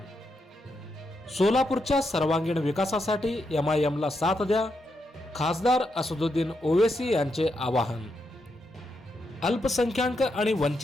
सोलापूरच्या सर्वांगीण विकासासाठी MIMला साथ द्या, खासदार असदुद्दीन ओवैसी यांचे आवाहन. अल्पसंख्याक आणि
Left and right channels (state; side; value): normal; both; correlation 0.82